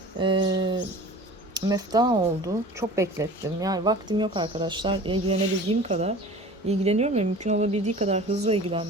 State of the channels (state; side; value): normal; both; correlation 0.41